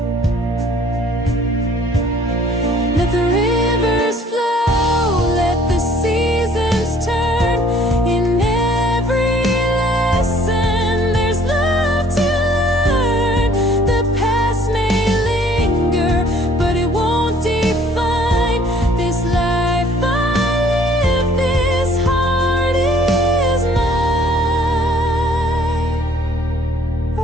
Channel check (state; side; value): normal; both; correlation 0.58